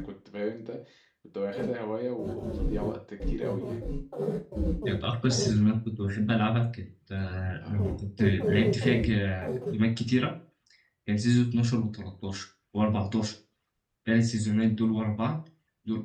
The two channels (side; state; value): both; identical; correlation 1.00